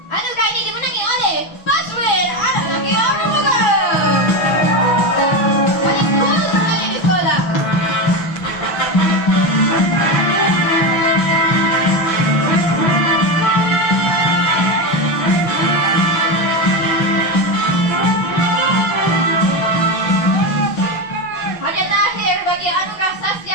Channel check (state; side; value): late; right; 6.1 ms